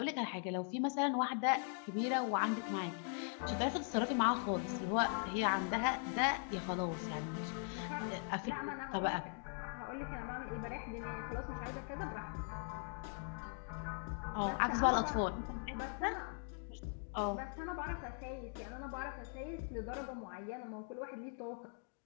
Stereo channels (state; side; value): silent; right; 51 dB below the other